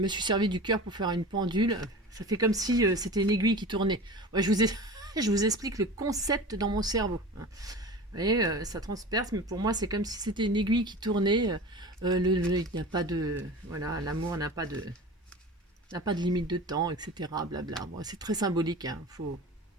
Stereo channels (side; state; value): both; normal; correlation 0.35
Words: suis servi du cœur pour faire une pendule. Ça fait comme si c'était une aiguille qui tournait. Ouais, je vous explique le concept dans mon cerveau, hein. Vous voyez, ça transperce, mais pour moi, c'est comme si c'était une aiguille qui tournait. Il n'y a pas de... Voilà, l'amour n'a pas de limite de temps, etc. Blabla. Bon, c'est très symbolique, hein. Faut